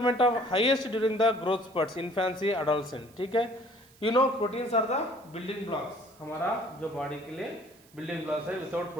of highest during the growth spurts, infancy, adolescent, ठीक है। You know proteins are the building blocks, हमारा जो बॉडी के लिए बिल्डिंग ब्लॉक्स है, विदाउट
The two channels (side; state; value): right; noise; hiss, 27 dB below the sound